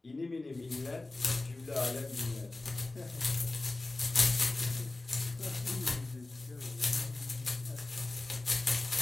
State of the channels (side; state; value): right; quieter; 3.0 dB